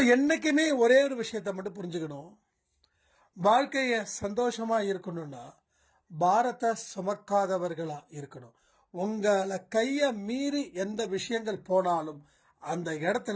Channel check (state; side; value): identical; both; correlation 1.00